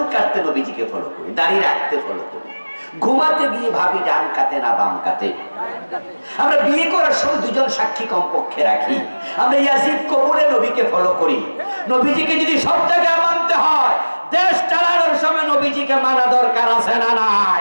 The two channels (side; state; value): both; inverted; correlation -1.00